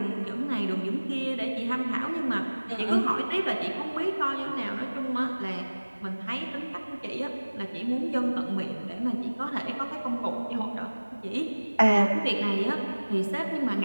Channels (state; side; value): inverted; both; correlation -1.00